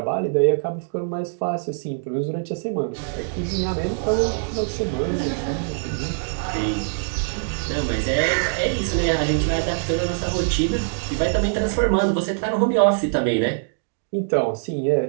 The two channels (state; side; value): silent; left; digital silence